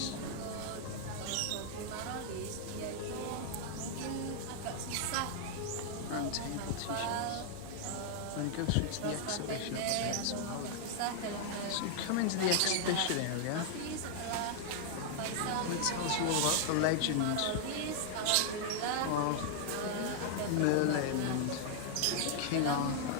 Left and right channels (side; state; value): both; different; correlation 0.00